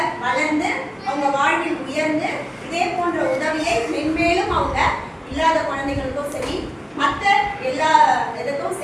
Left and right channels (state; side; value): identical; both; correlation 1.00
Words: வளர்ந்து அவங்க வாழ்வில் உயர்ந்து இதே போன்ற உதவியை மென்மேலும் அவங்க இல்லாத குழந்தைகளுக்கும் சரி மற்ற எல்லா இதுக்கும்